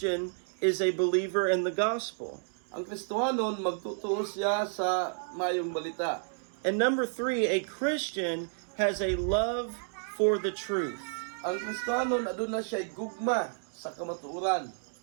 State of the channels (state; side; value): silent; left; digital silence